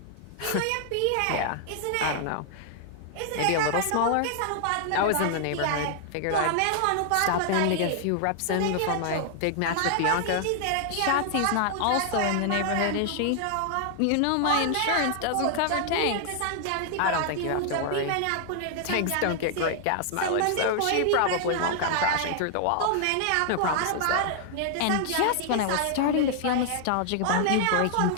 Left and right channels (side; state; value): both; different; correlation 0.00